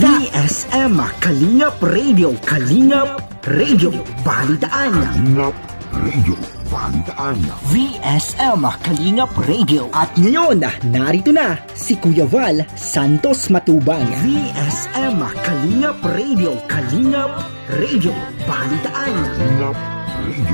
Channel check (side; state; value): both; inverted; correlation -1.00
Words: VSM Kalingap Radio, Kalingap Radio, Balitaan. Kalingap Radio, Balitaan. VSM Kalingap Radio. At ngayon, narito na si Kuya Val Santos Matubang. VSM Kalingap Radio, Kalingap Radio, Balitaan. Kalingap